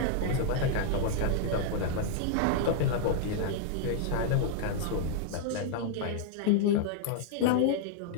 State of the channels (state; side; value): different; both; correlation -0.01